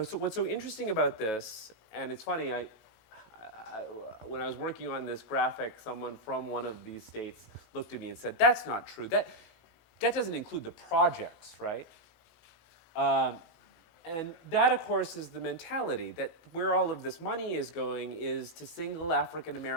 so what's so interesting about this, and it's funny, when I was working on this graphic, someone from one of these states looked at me and said, that's not true. That doesn't include the projects, right? And that, of course, is the mentality that where all of this money is going is to single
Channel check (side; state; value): right; late; 16 ms